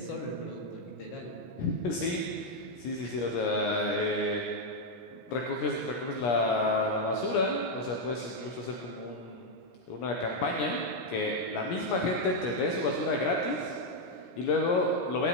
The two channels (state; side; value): late; right; 17 ms